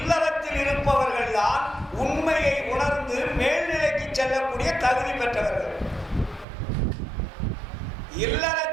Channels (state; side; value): drops out; left; at 6.5 s